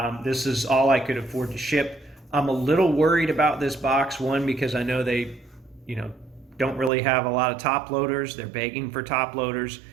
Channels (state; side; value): drops out; left; at 6.9 s